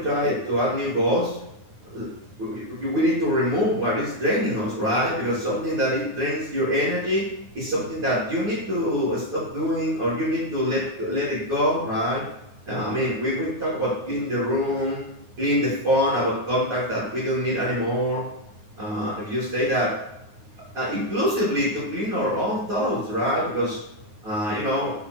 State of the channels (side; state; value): left; late; 9.6 ms